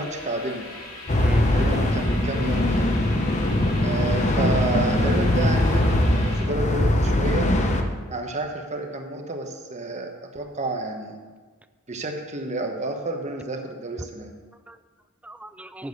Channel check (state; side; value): normal; both; correlation 0.67